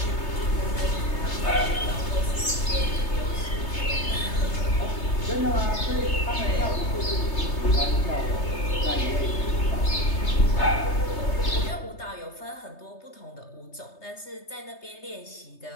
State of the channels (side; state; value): right; late; 3.3 ms